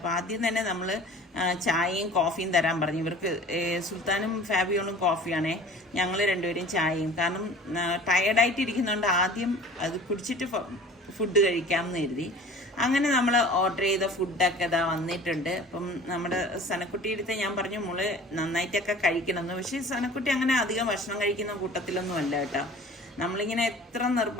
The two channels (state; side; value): normal; both; correlation 0.44